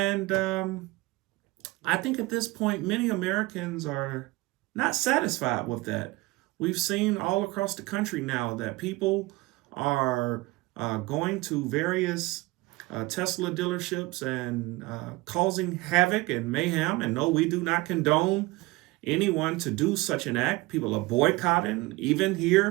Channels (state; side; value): quieter; left; 21.6 dB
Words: I think at this point, many Americans are not satisfied with that. We've seen all across the country now that people are going to various Tesla dealerships and causing havoc and mayhem. And no, we do not condone anyone to do such an act. People are boycotting, even